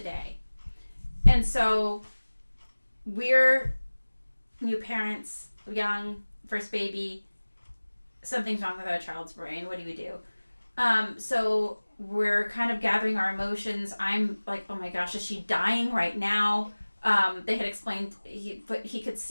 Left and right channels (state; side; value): inverted; both; correlation -1.00